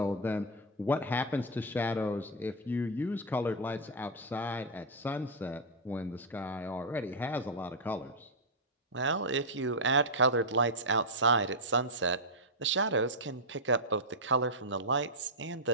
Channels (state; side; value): normal; both; correlation -0.04